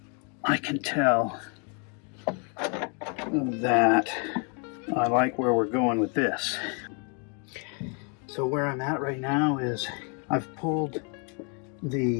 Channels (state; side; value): quieter; right; 37.8 dB